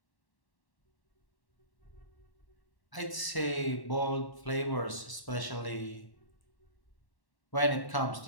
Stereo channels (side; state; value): right; late; 1.0 ms